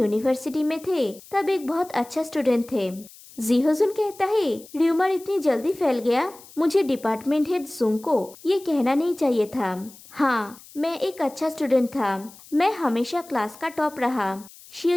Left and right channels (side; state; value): left; noise; hiss, 21 dB below the sound